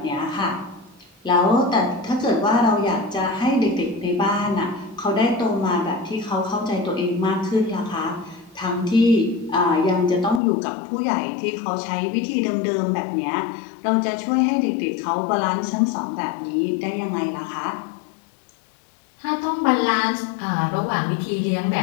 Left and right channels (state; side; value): drops out; right; at 10.4 s